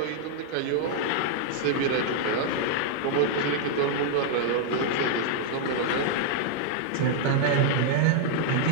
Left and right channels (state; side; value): different; both; correlation -0.01